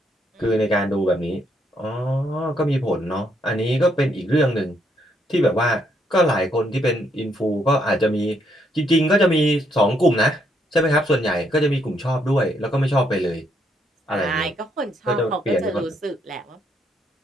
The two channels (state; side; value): normal; both; correlation 0.73